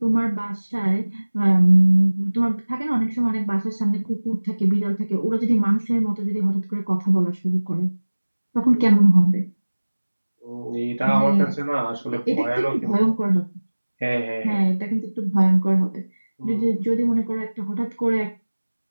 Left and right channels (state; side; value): inverted; both; correlation -1.00